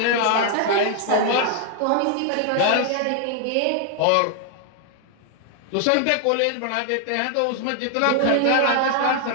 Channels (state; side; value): different; both; correlation 0.00